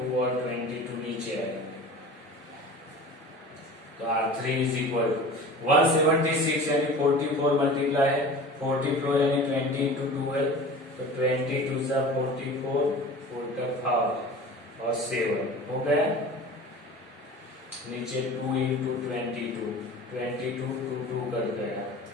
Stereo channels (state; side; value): normal; both; correlation 0.38